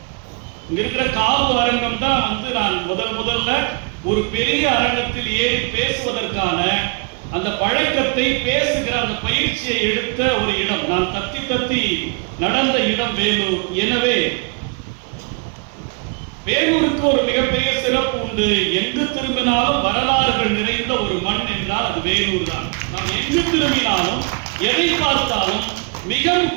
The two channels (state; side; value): quieter; left; 32.1 dB